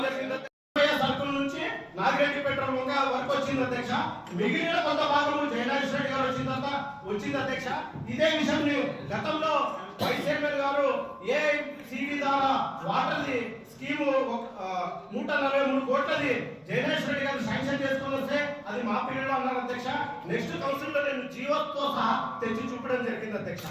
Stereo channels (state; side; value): identical; both; correlation 1.00